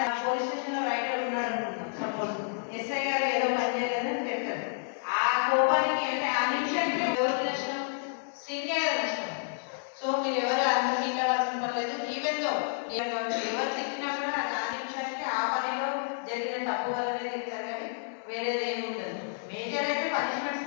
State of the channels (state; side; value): silent; right; 56 dB below the other